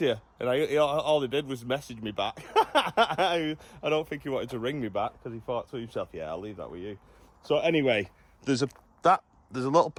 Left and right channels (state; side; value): identical; both; correlation 1.00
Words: you." And all he did was message me back. I don't think he wanted to ring me back because he thought to himself, "Yeah, I'll leave that with you." So anyway, there's a little